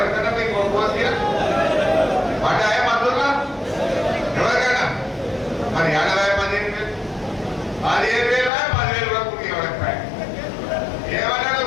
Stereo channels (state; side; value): drops out; right; at 8.5 s